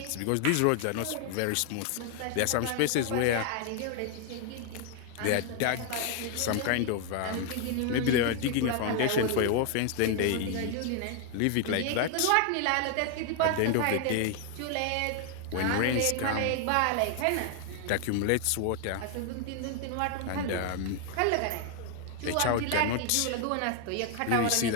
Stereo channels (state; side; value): different; both; correlation 0.00